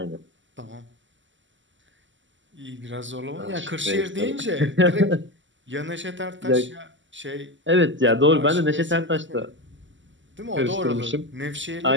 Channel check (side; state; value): left; late; 0.54 ms